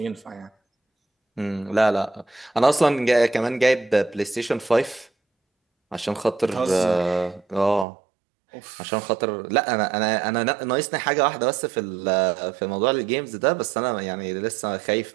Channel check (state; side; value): drops out; left; at 7.9 s